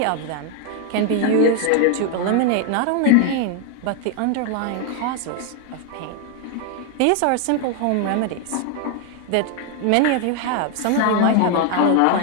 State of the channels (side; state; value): both; different; correlation 0.00